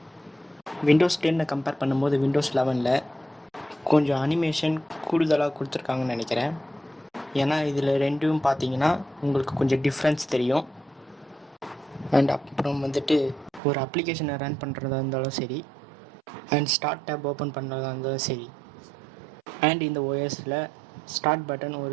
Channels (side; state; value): left; drops out; at 13.6 s